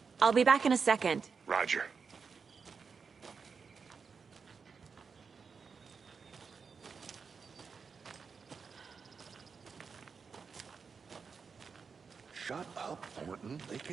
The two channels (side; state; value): left; quieter; 5.5 dB